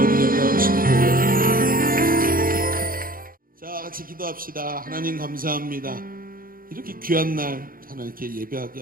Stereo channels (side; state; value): left; late; 0.41 ms